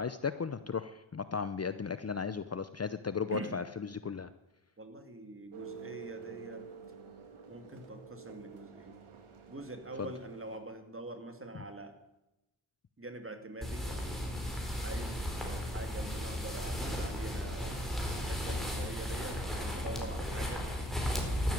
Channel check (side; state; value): both; normal; correlation 0.43